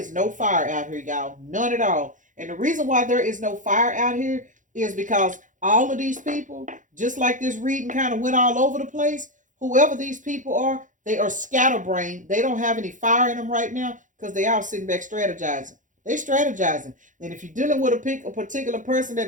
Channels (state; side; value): late; left; 0.37 ms